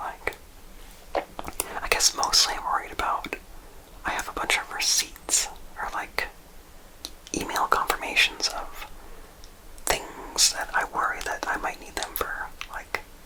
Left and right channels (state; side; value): identical; both; correlation 1.00